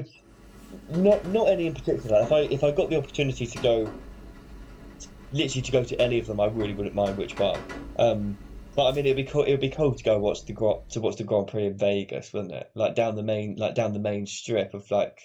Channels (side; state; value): both; identical; correlation 1.00